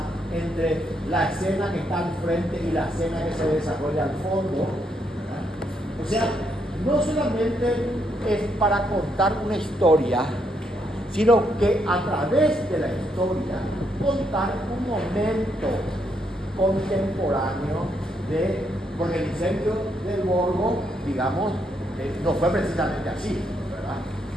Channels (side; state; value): both; normal; correlation 0.76